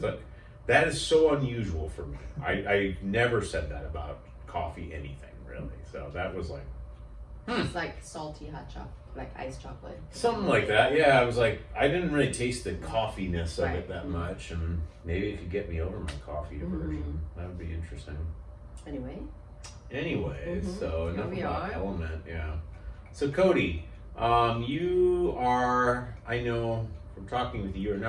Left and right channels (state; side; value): identical; both; correlation 1.00